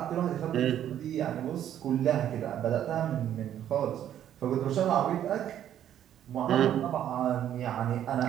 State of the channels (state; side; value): quieter; left; 10.7 dB